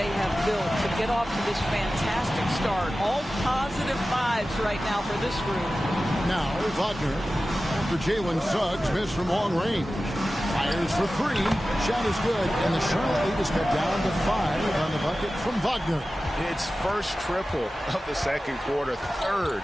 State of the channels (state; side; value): normal; both; correlation 0.95